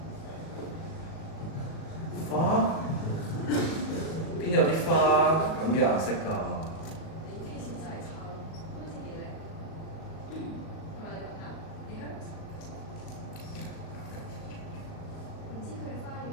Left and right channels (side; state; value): right; late; 37 ms